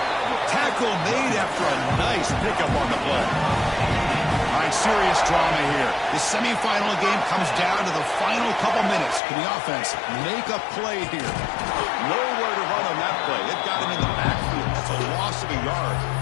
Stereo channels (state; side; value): drops out; right; at 9.2 s